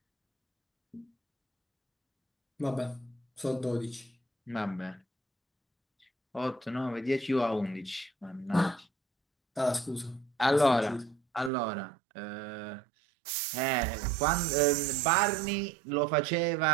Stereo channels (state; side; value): drops out; left; at 11.5 s